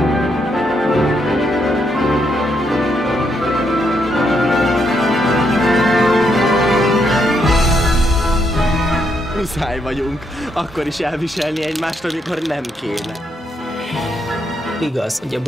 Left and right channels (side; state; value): both; normal; correlation 0.77